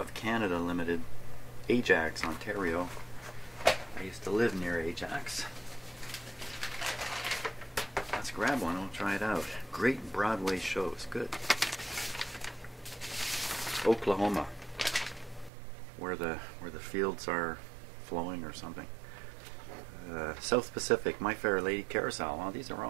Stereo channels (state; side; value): drops out; left; at 15.5 s